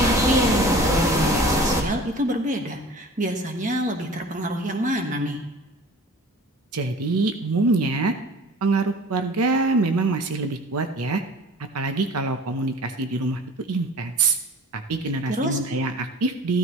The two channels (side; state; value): both; normal; correlation 0.43